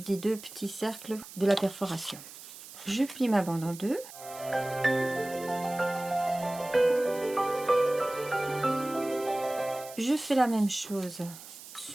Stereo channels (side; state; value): right; noise; hiss, 15 dB below the sound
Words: deux petits cercles de la perforation. Je plie ma bande en deux. Je fais la même chose